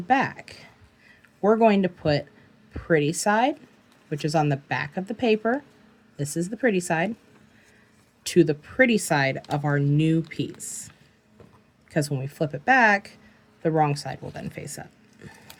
back, we're going to put pretty side, which is on the back of the paper. This is the pretty side, to the pretty side of our new piece. Because when we flip it back, the wrong side will then face up.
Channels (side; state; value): both; identical; correlation 1.00